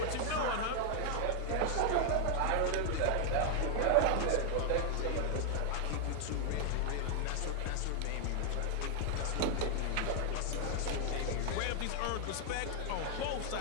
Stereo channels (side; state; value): both; different; correlation 0.00